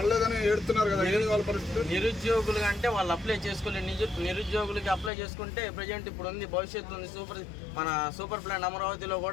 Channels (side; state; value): right; drops out; at 5.1 s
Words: ఏడుతున్నారు కదా, వాళ్ళ పరిస్థితి? నిరుద్యోగులు అంటే వాళ్ళు అప్లై చేసుకోలేదు. నిరుద్యోగులకి అప్లై చేసుకుంటే ప్రజెంట్ ఇప్పుడు ఉంది, భవిష్యత్తు ఉంది. మన సూపర్ ప్లాన్ అమరావతిలో